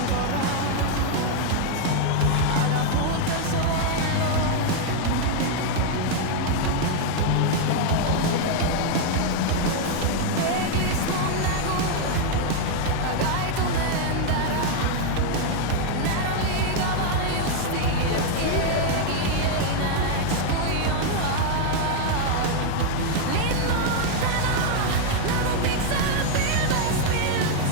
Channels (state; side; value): different; both; correlation 0.00